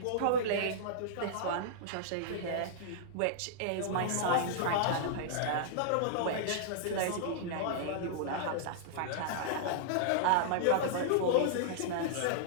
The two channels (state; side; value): different; both; correlation -0.02